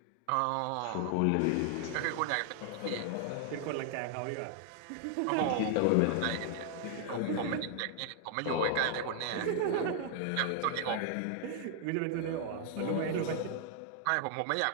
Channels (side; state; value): both; different; correlation 0.00